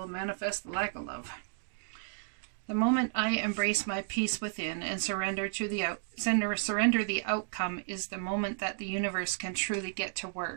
manifest the lack of love. The moment I embrace my peace within and surrender the outcome is the moment that the universe can truly get to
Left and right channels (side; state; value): left; silent; digital silence